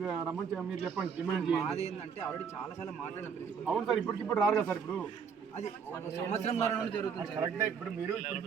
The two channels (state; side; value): quieter; left; 6.5 dB